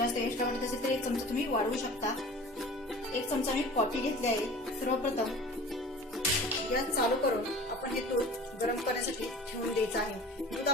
एक्स्ट्रा वाटत असेल तर 1 चमचा तुम्ही वाढवू शकता। 1 चमचा मी कॉफी घेतली आहे। सर्वप्रथम गॅस चालू करून आपण हे दूध गरम करण्यासाठी ठेवून द्यायचं आहे। दूध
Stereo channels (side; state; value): both; normal; correlation 0.41